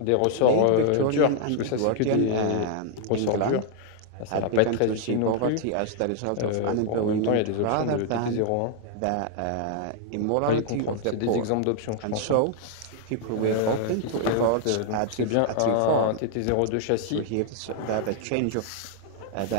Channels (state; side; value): different; both; correlation 0.00